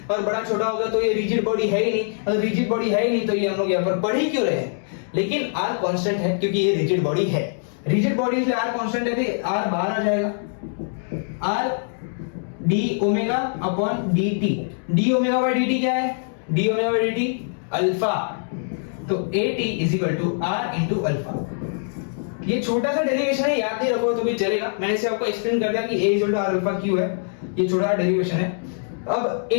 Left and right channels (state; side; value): silent; right; digital silence